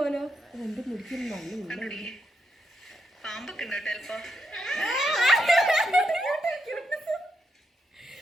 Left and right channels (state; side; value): normal; both; correlation 0.82